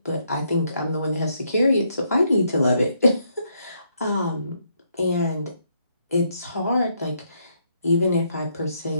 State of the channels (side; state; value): both; inverted; correlation -0.74